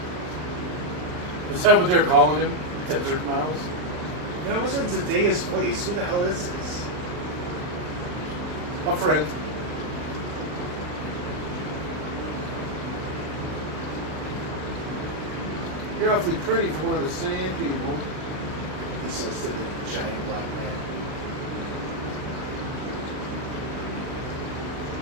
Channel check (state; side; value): late; left; 39 ms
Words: Is that what they're calling him? Desert Mouse? That wasn't Zendaya's voice. Who the hell is this? A friend. You're awfully pretty for one of the sand people. He says to the giant black man.